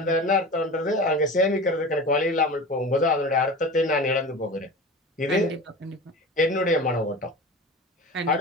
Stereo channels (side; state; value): both; normal; correlation 0.33